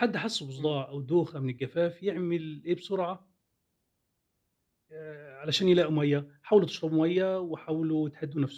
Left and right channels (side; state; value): both; identical; correlation 1.00